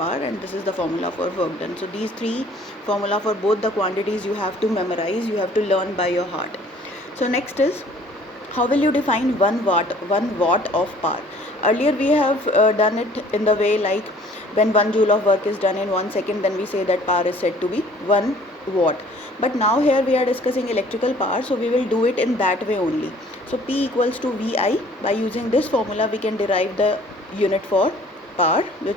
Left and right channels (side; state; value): both; normal; correlation 0.54